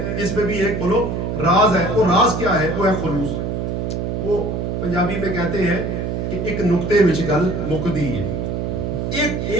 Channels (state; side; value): noise; right; hum, 2 dB below the sound